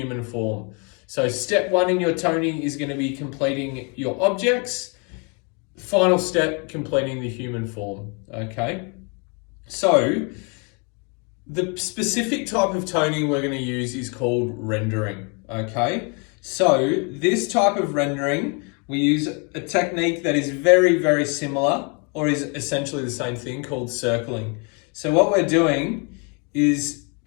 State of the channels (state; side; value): quieter; right; 34.7 dB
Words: form. So step one in your toning is going to be completing your objects. Final step, completing the human form. Okay. So the specific type of toning we're going to use is called rendering. Okay. So this type of rendering, we use a technique that is very, very similar, or is essentially the same thing, called circling. So what we're doing is